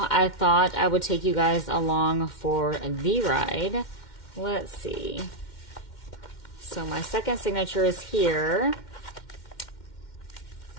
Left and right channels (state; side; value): late; right; 2.1 ms